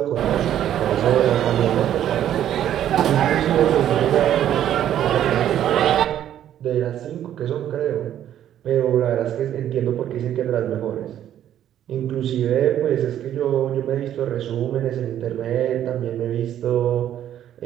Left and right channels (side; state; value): left; quieter; 11.0 dB